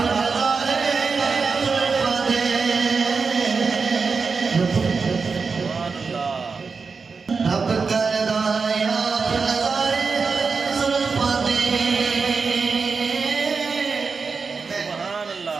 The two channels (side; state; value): left; quieter; 4.9 dB